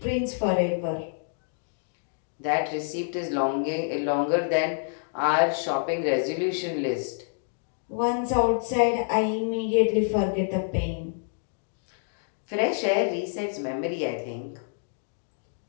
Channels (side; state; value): right; silent; digital silence